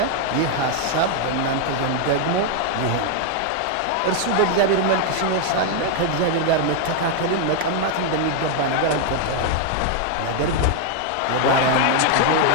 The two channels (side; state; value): both; different; correlation 0.00